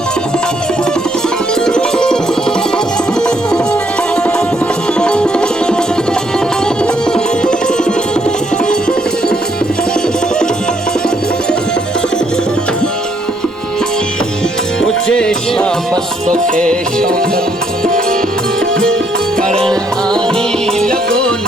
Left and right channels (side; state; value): both; normal; correlation 0.71